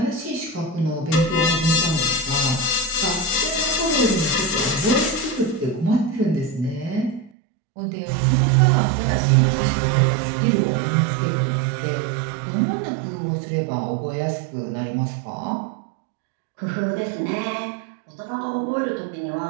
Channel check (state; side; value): drops out; left; at 7.3 s